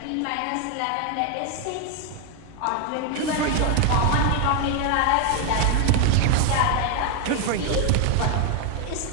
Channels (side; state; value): both; different; correlation 0.01